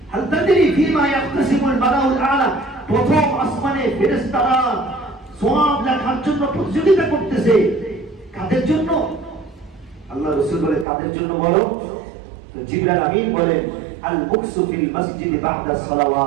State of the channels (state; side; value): drops out; left; at 10.9 s